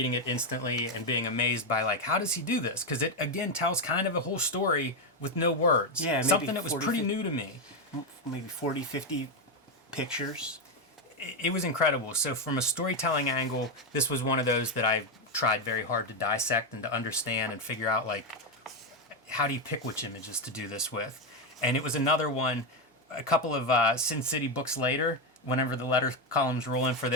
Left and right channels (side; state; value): both; normal; correlation 0.07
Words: it instantly and being amazed by, like, how does he do this? Because it again tells kind of a whole story with no words. Yeah, something that was pretty new to me. Maybe 40, 50 pictures. It was incredible. So from a storytelling angle, this was one of those that I tried very hard to dissect and to understand and figure out, like, how do you pick which images to do this with? And it was another one, a couple of Sin City books later, whenever the letter columns roll in for